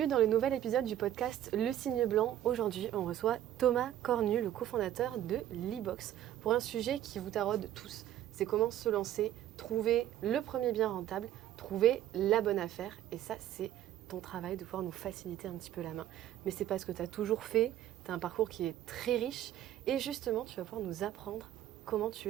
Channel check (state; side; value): quieter; left; 12.2 dB